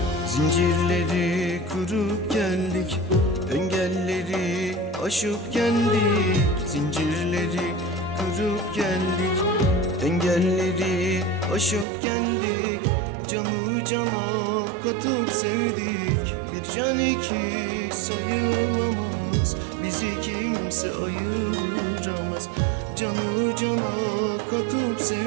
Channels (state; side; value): drops out; left; at 11.9 s